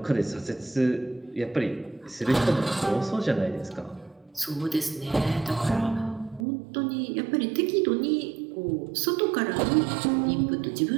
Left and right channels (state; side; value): drops out; left; at 6.5 s